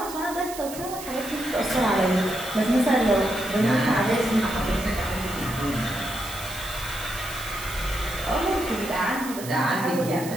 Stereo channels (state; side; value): noise; right; hiss, 12 dB below the sound